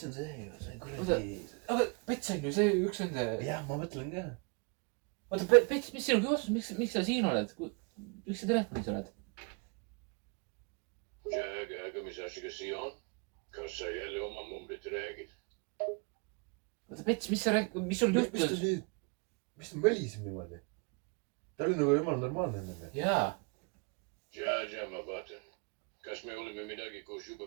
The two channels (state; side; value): quieter; left; 32.4 dB